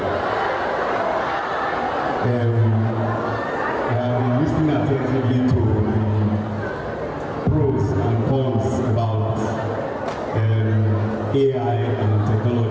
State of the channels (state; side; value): identical; both; correlation 1.00